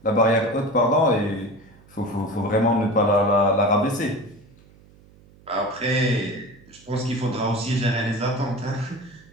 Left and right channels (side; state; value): right; noise; hum, 26 dB below the sound